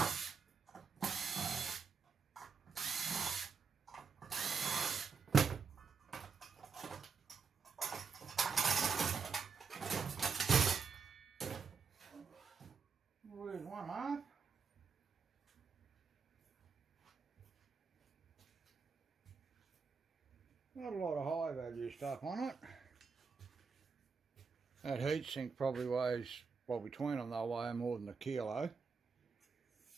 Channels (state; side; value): quieter; left; 5.5 dB